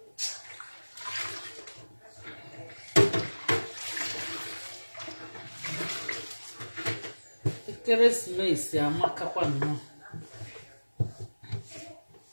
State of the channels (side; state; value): both; inverted; correlation -1.00